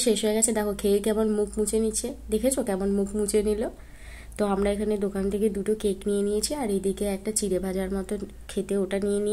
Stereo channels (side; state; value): both; identical; correlation 1.00